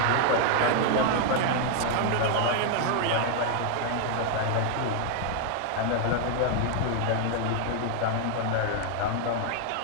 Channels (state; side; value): different; both; correlation 0.00